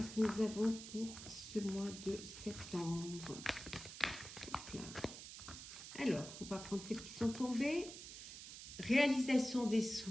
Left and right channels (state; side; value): noise; right; hiss, 11 dB below the sound